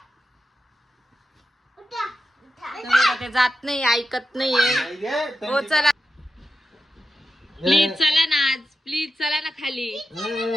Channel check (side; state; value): both; normal; correlation 0.90